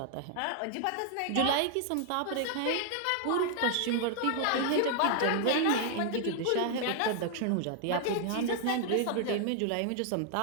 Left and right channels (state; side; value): different; both; correlation 0.00